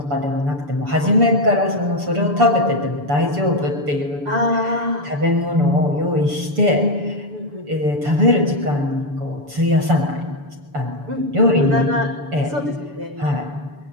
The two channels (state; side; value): late; left; 6.9 ms